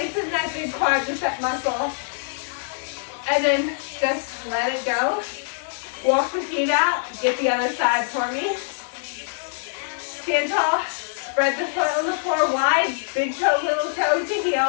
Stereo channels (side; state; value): right; silent; 63 dB below the other